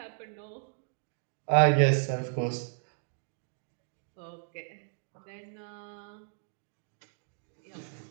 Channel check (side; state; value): left; silent; 55 dB below the other